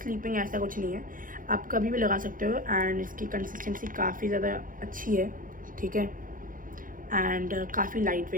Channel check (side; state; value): left; late; 0.40 ms